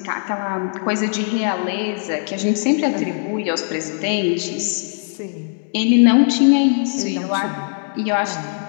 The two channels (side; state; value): right; silent; 66 dB below the other